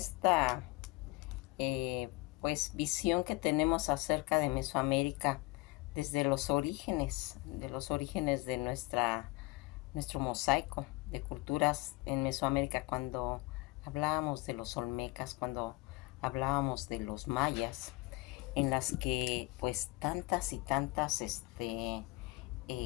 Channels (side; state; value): right; quieter; 22.0 dB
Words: visión que tenemos acerca de Mesoamérica desde los orígenes de nuestro mosaico de culturas en Mesoamérica, cuando hablábamos de los olmecas, cuando hablábamos de los mayas, en las que pues tantas y tantas